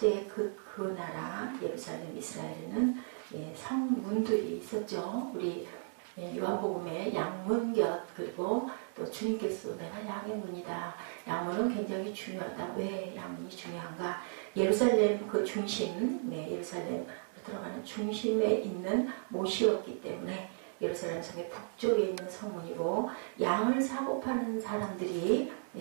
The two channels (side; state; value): left; silent; digital silence